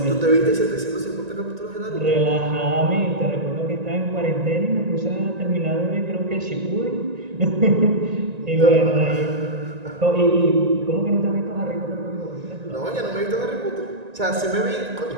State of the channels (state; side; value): late; left; 1.9 ms